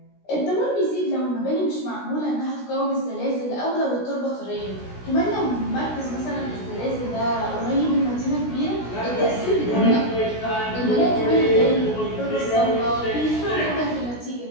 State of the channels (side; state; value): right; late; 16 ms